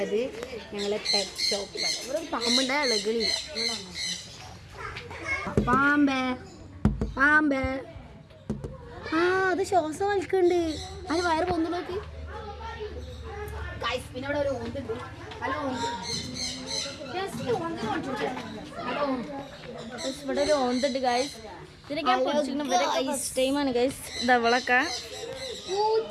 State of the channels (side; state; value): both; identical; correlation 1.00